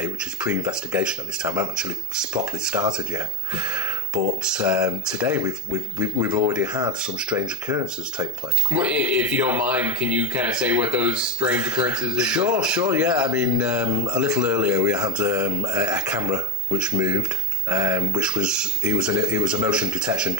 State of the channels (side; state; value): both; normal; correlation 0.08